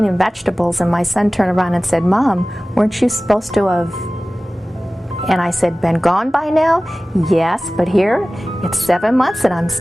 vegetables and my son turned around and said, "Mom, weren't you supposed to have..." And I said, "Been gone by now?" "Yes, but here, it's 7 months and I'm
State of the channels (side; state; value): both; normal; correlation 0.97